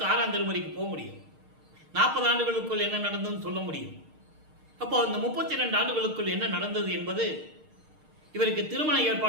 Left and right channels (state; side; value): late; left; 6.5 ms